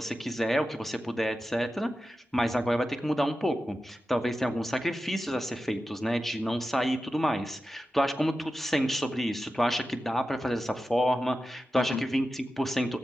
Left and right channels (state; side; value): normal; both; correlation 0.92